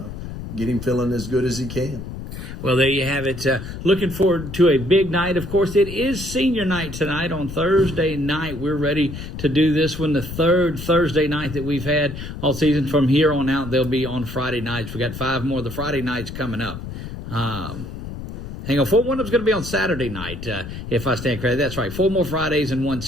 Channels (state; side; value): noise; left; rumble, 9 dB below the sound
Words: him feeling as good as he can. Well, there you have it. Looking forward to a big night. Of course, it is senior night tonight on Thursday night. We're ready to do this one, the third Thursday night that we've had all season. From here on out, they'll be on Friday nights. We got 5 more of the Friday nights coming up. Hang on, one of them's going to be on Saturday night, if I stand corrected. That's right. 4 more Fridays and 1